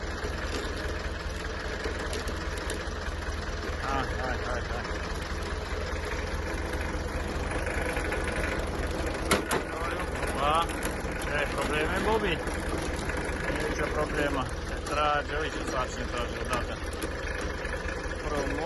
Hai. Opa. Ai probleme, Bobby? Nu e nicio problemă. Se trage, uite ce sarcină trage odată.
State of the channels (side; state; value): both; identical; correlation 1.00